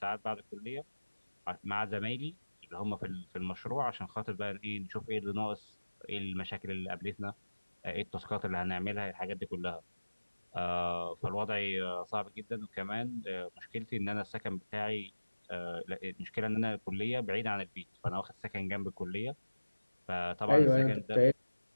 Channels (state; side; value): inverted; both; correlation -1.00